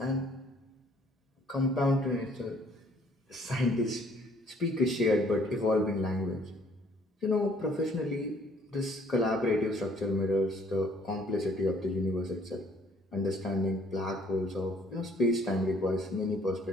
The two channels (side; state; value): both; normal; correlation 0.60